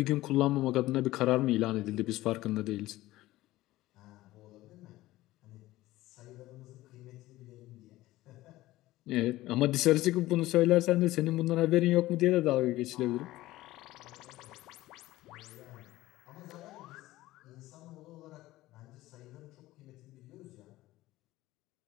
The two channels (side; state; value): right; quieter; 17.0 dB